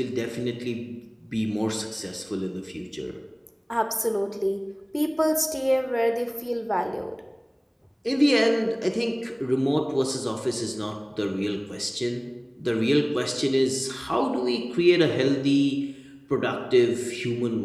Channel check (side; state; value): both; identical; correlation 1.00